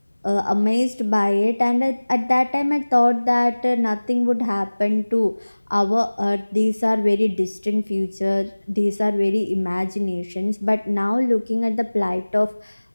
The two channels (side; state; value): both; inverted; correlation -1.00